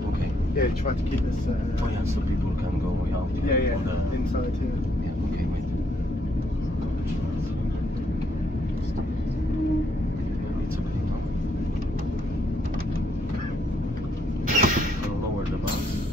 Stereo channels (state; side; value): normal; both; correlation 0.73